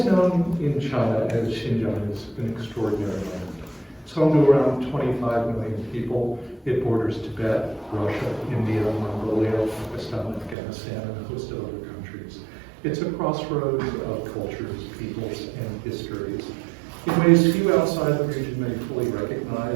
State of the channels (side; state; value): left; drops out; at 10.6 s